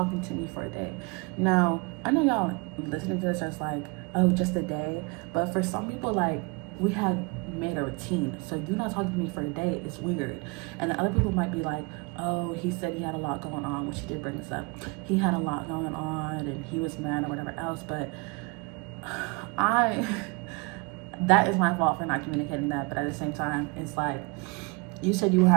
me for a day. Now I know y'all listening to this just like, oh, just a day, but for some people, like, we have made a routine, so you not talking to me for a day is weird. And the other people might be like, oh, he said he had a lot going on, which he did bring this up. He had a lot going on and he was mad or whatever else, but that is my fault for not communicating that. But at the same time, it's like, you said you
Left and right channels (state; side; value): quieter; left; 28.9 dB